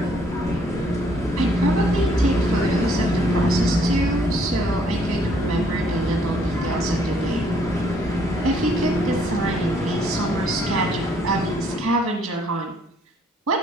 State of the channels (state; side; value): normal; both; correlation 0.65